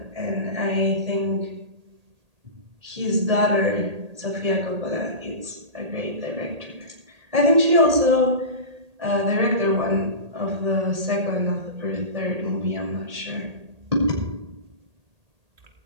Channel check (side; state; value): left; late; 1.8 ms